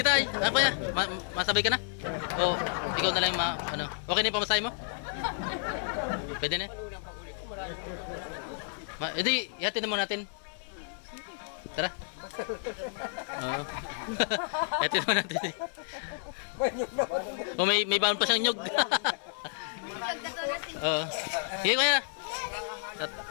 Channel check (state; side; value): silent; right; 57 dB below the other